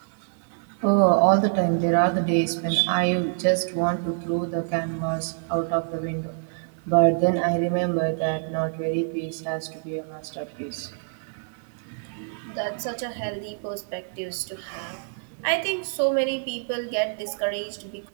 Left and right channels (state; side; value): silent; left; digital silence